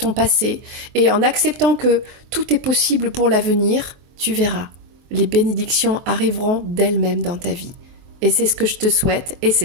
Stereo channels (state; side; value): late; left; 23 ms